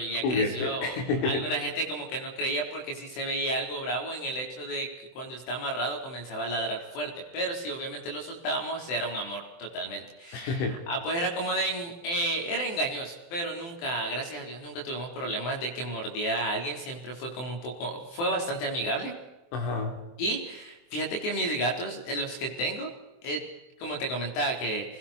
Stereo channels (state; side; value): late; right; 23 ms